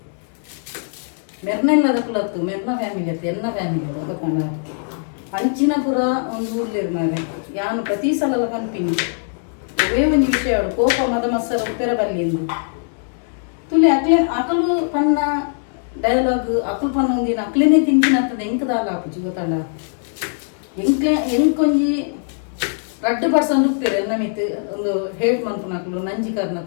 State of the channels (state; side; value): silent; right; digital silence